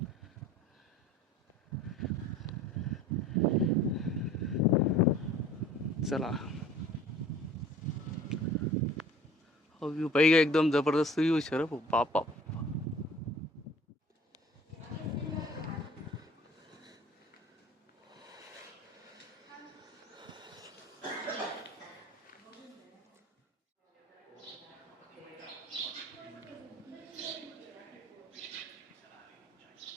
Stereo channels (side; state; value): both; normal; correlation 0.47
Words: चला व्ह्यू पाहिजे एकदम जबरदस्त व्ह्यू शर बाप बाप